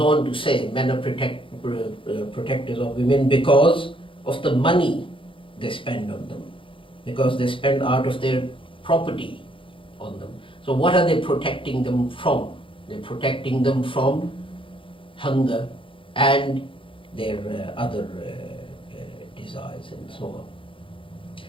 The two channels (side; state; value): right; late; 0.25 ms